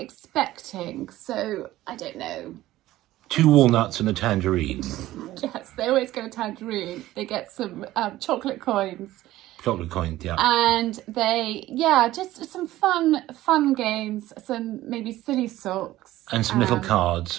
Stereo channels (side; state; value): left; quieter; 15.6 dB